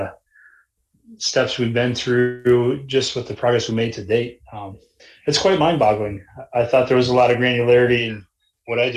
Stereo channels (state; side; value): identical; both; correlation 1.00